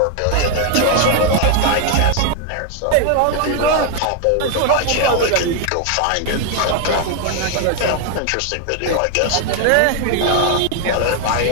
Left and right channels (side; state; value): both; different; correlation 0.01